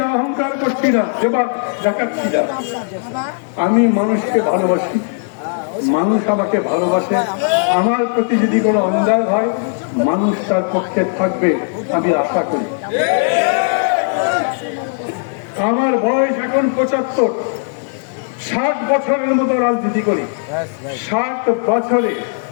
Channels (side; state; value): right; silent; 68 dB below the other